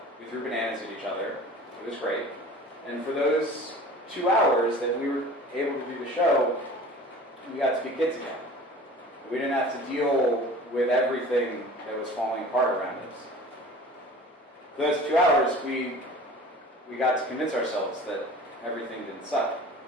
we threw bananas at each other. It was great. And for those 2 hours that we were able to do the show, we got to be kids again. We didn't have to deal with everything that was falling apart around us. For those 2 hours, we got to convince ourselves that everything didn't suck.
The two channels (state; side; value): normal; both; correlation 0.42